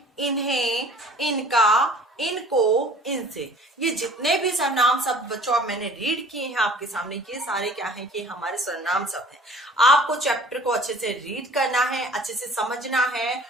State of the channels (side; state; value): both; normal; correlation 0.50